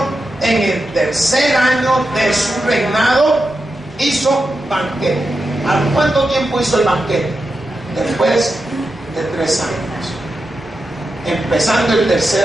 en el tercer año de su reinado, hizo banquete. ¿A cuánto tiempo hizo el banquete? Después de 3 años. Empezando el tercer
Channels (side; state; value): right; noise; hum, 25 dB below the sound